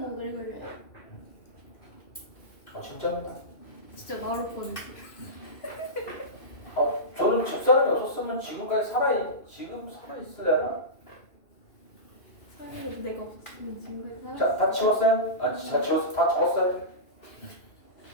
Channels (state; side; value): late; right; 2.6 ms